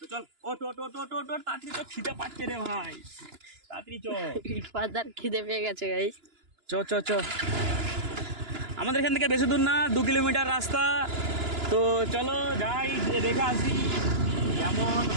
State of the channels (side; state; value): left; late; 2.9 ms